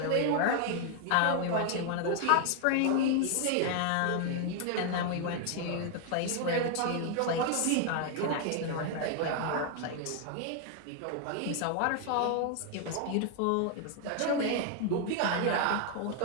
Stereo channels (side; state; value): both; different; correlation 0.00